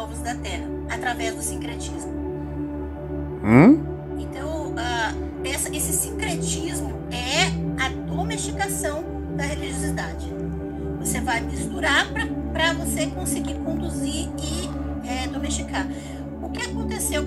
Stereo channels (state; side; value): identical; both; correlation 1.00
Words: da terra através do sincretismo. Então, esse sincretismo é a domesticação da religiosidade. Você vai misturar para você conseguir conduzir e domesticar. O que aconteceu